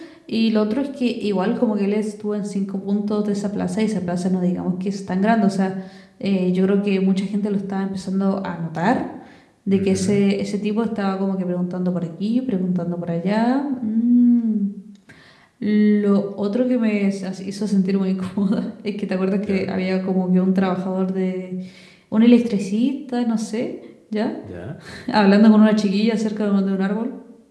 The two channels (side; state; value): both; identical; correlation 1.00